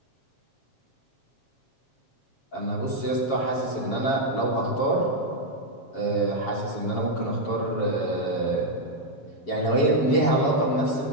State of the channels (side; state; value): right; late; 7.3 ms